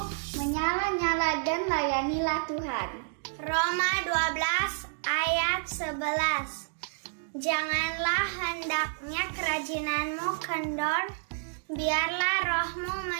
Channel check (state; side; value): silent; left; digital silence